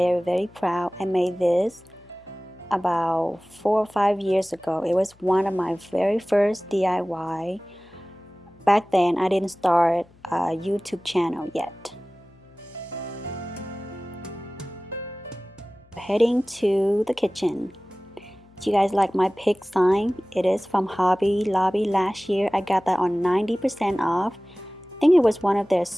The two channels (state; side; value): noise; left; hum, 29 dB below the sound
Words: proud. I made this about 4 or 5 years ago. It was one of my very first DIY. Back then I didn't start a YouTube channel yet. Heading to the kitchen. Do you guys like my pig sign? It is from Hobby Lobby last year. I got that on 90% off. I think it was one of their